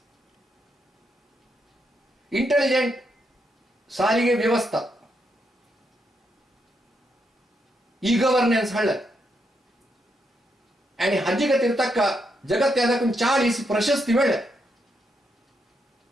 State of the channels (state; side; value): normal; both; correlation 0.80